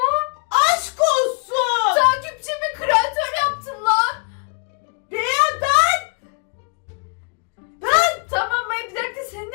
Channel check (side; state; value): right; quieter; 37.9 dB